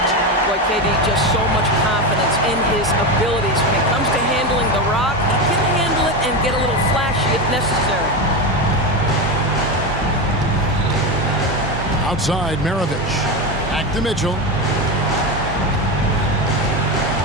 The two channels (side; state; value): both; normal; correlation 0.17